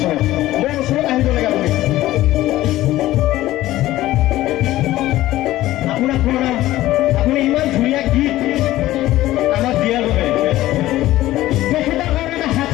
মোৰ ওচৰত আহিব লাগে আপুনি। আপোনাক প্ৰণাম, আপুনি ইমান ধুনীয়া গীত আমাক দিয়াৰ বাবে। তেখেতৰ কাৰণে এটা হাত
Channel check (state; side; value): quieter; right; 15.6 dB